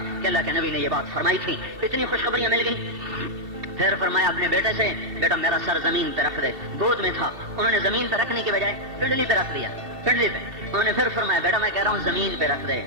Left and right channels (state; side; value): late; left; 2.7 ms